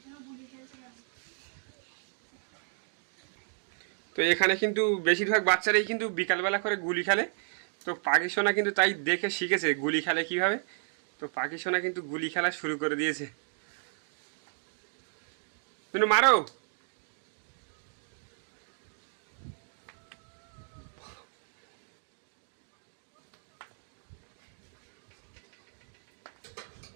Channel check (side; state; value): left; silent; 56 dB below the other